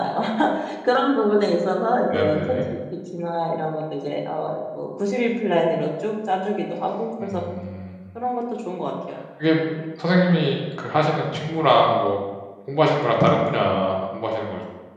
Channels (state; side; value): identical; both; correlation 1.00